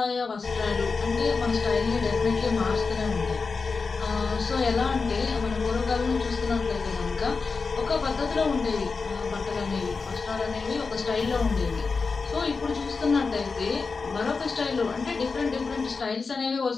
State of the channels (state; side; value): quieter; right; 4.6 dB